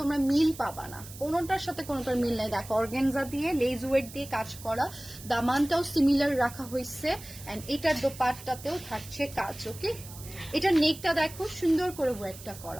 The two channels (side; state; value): right; noise; hiss, 16 dB below the sound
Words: মিল পাবা না, কোনোটার সাথে কোনোটার মিল নাই। দেখো অর্গানজা দিয়ে লেজ ওয়েট দিয়ে কাজ করা, দামানটাও সিমিলার রাখা হয়েছে, এন্ড এটার দোপাট্টাতেও থাকছে কাজ, ওকে। এটা নেকটা দেখো সুন্দর করে ওয়েটটা